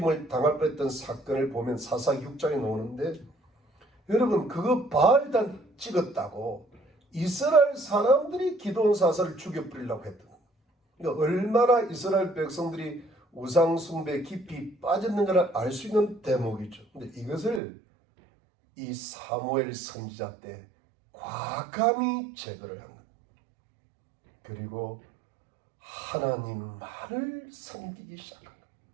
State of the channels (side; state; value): left; drops out; at 17.6 s